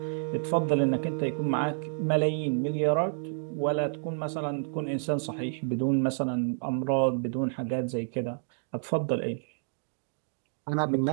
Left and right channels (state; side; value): silent; left; digital silence